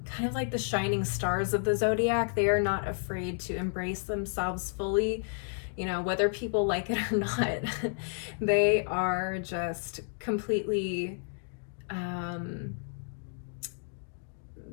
kind of like the shining stars of the zodiac. They are not afraid to embrace themselves fully. You know, whether people like it or not, they are just completely, how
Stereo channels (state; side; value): silent; right; digital silence